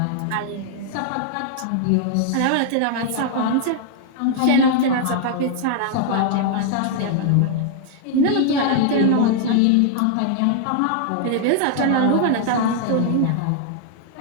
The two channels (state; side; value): different; both; correlation 0.00